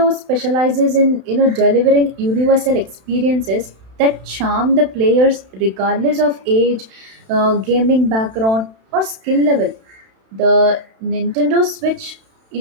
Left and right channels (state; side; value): late; left; 31 ms